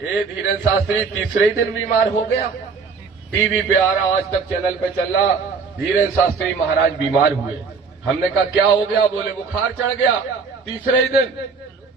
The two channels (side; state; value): left; quieter; 5.1 dB